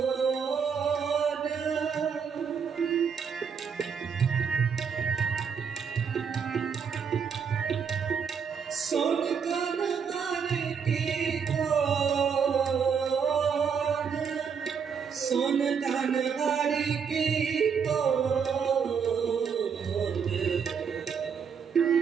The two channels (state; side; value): quieter; left; 6.6 dB